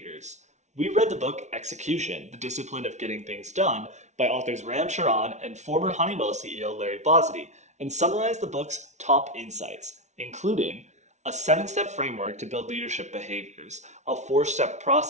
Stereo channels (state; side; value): late; left; 0.33 ms